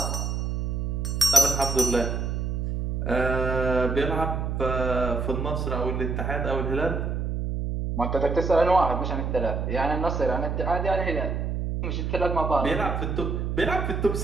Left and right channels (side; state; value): right; noise; hum, 1 dB below the sound